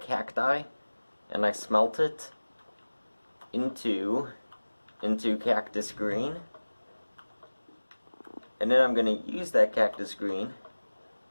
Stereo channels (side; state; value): both; inverted; correlation -1.00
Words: and I smelt it into cactus green, and then I'm going to use that cactus green